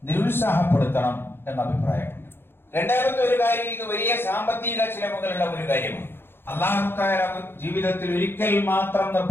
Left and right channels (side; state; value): right; late; 0.11 ms